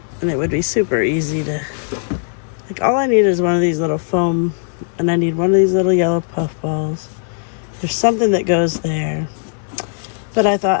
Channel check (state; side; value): silent; right; digital silence